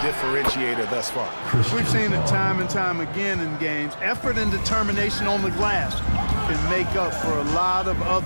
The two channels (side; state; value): both; inverted; correlation -1.00